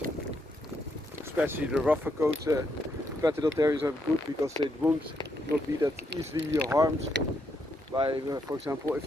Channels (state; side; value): normal; both; correlation 0.78